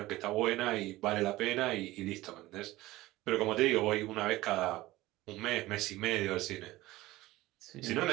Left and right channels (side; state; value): left; quieter; 17.9 dB